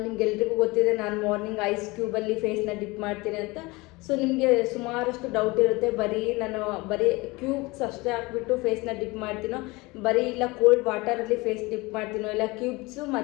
ನಿಮ್ಗೆಲ್ರಿಗೂ ಗೊತ್ತಿದೆ, ನಾನು ಮಾರ್ನಿಂಗ್ ಐಸ್ ಕ್ಯೂಬಲ್ಲಿ ಫೇಸ್ನ ಡಿಪ್ ಮಾಡ್ತೀನಿ ಅಂತ. ಸೊ ನಿಮಗೆ ಸುಮಾರಷ್ಟು ಡೌಟ್ ಇರುತ್ತೆ, ಬರೀ ಕ್ಯೂಬ್ಸ್ ಅಷ್ಟೇ ಹಾಕ್ಬಿಟ್ಟು ಫೇಸ್ನ ಡಿಪ್ ಮಾಡ್ತೀನೋ, ಇಲ್ಲ ಕೋಲ್ಡ್ ವಾಟರಲ್ಲಿ ಫೇಸ್ ಡಿಪ್ ಮಾಡ್ತೀನೋ, ಇಲ್ಲ ಕ್ಯೂಬ್ಸು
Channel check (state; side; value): quieter; right; 23.5 dB